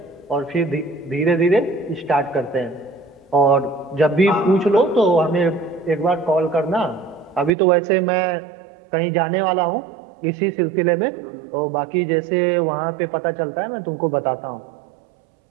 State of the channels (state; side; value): drops out; left; at 7.6 s